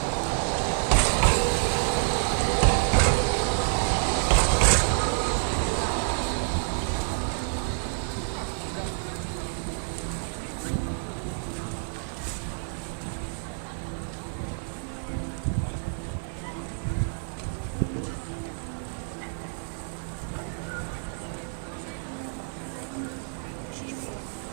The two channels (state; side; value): silent; left; 59 dB below the other